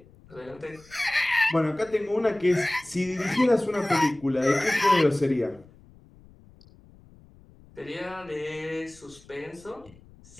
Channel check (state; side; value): noise; left; rumble, 25 dB below the sound